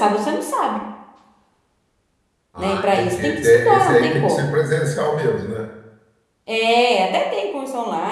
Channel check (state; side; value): identical; both; correlation 1.00